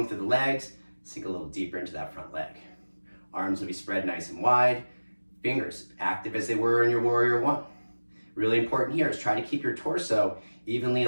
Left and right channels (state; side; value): inverted; both; correlation -1.00